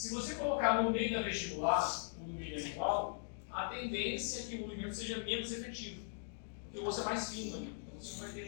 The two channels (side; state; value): right; silent; digital silence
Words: você colocar no meio da vestibular, ou no meio da lingual, a tendência é que o movimento seja menos efetivo. Porque o osso é mais fino ali, então você não vai